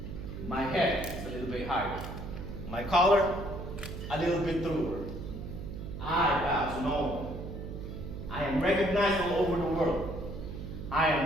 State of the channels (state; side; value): noise; right; hum, 8 dB below the sound